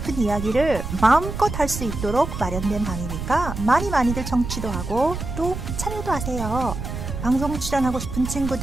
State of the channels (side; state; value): right; noise; rumble, 6 dB below the sound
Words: 이야기를 마음껏 할 수 있도록 마련된 방이니까 많이들 청취도 하고 또 참여도 하세요. 방송 출연하고 싶은